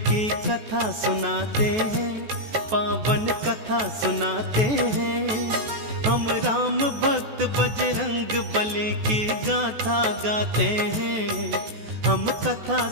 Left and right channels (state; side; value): late; left; 14 ms